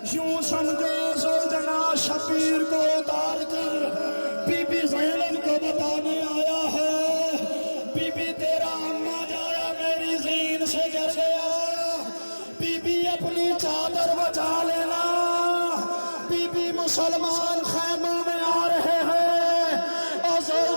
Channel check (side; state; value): both; inverted; correlation -1.00